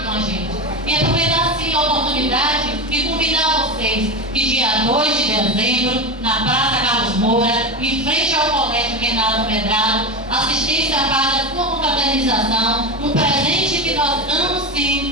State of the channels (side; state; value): both; normal; correlation 0.19